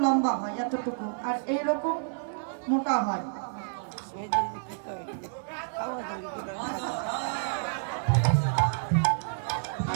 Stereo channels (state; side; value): silent; left; digital silence